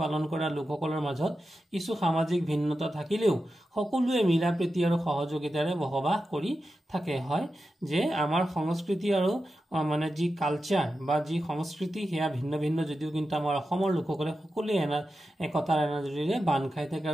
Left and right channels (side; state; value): both; normal; correlation 0.91